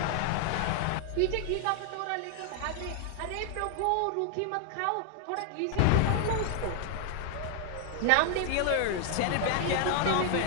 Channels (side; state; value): both; different; correlation 0.00